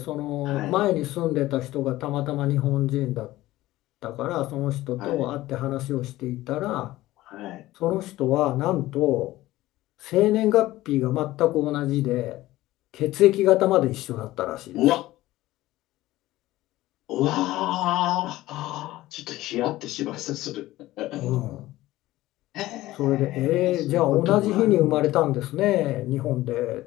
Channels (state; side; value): quieter; right; 16.7 dB